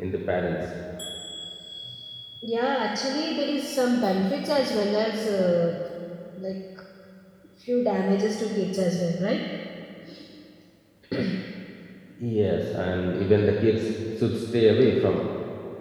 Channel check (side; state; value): both; identical; correlation 1.00